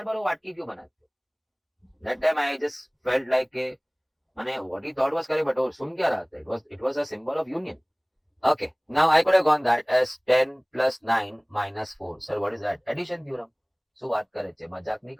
बार वो वाटकी क्यों बनाते हो? That time I just felt like माने what he thought was correct, but वो सुन क्या रहा था? It was a symbol of union. Okay, now I could have gone that as 10 plus 9 minus 4. Sir, what is that? Addition theorem. So बात करे थे, मजाक नहीं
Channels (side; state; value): both; identical; correlation 1.00